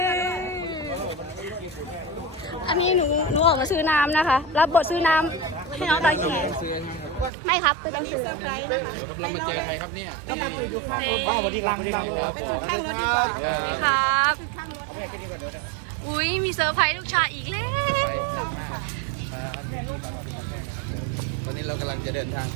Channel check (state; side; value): drops out; left; at 7.3 s